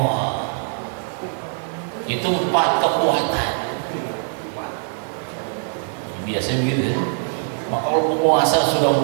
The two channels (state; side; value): silent; left; 59 dB below the other